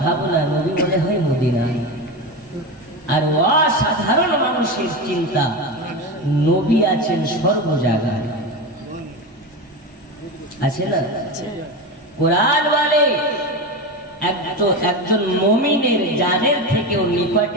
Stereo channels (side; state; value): both; normal; correlation 0.20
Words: ভাবনা নবী মনে হয় মদিনায়, আর অসাধারণ মানুষের চিন্তা নবী আছেন সর্ব জায়গায়। আছে না? কোরআন বলে একজন মুমিনের জানের থেকেও